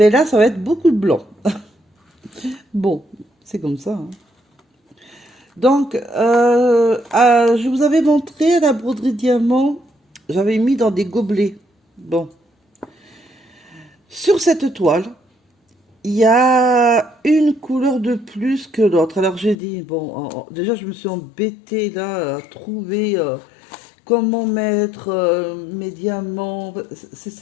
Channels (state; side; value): drops out; right; at 19.6 s